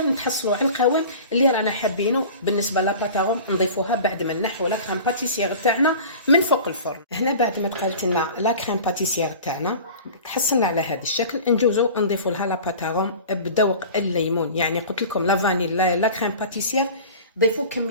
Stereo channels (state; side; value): inverted; both; correlation -0.39